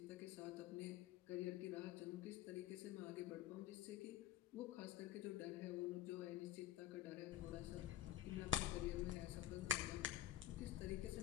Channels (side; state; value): right; quieter; 11.9 dB